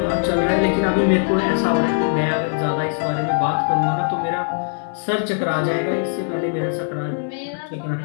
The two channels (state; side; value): silent; right; 65 dB below the other